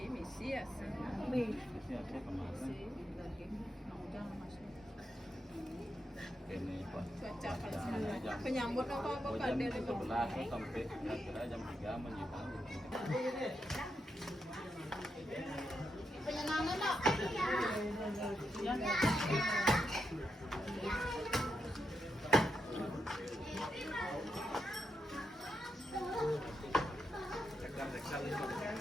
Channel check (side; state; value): both; normal; correlation 0.84